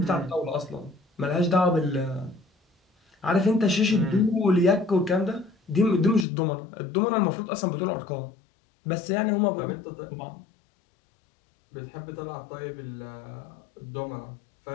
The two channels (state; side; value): drops out; right; at 6.2 s